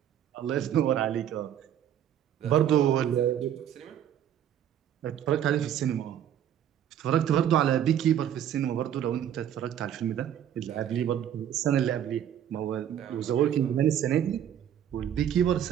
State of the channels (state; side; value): quieter; left; 10.1 dB